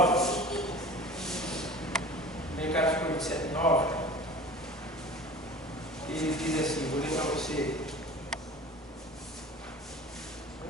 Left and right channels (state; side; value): normal; both; correlation 0.41